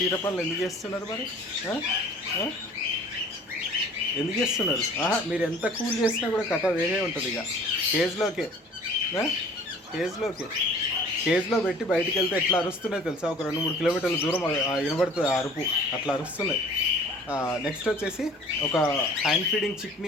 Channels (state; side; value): normal; both; correlation 0.49